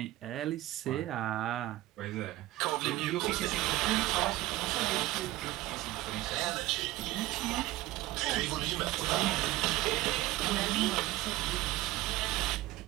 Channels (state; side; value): quieter; left; 17.2 dB